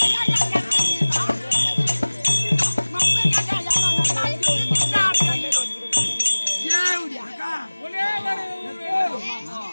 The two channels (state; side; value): inverted; both; correlation -1.00